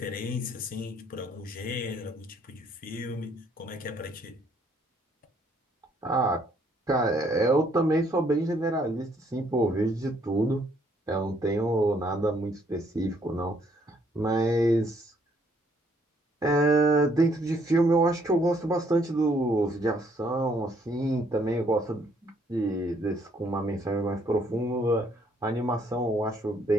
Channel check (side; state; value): both; normal; correlation 0.67